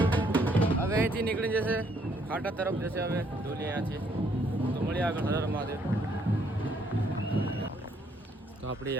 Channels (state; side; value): normal; both; correlation 0.68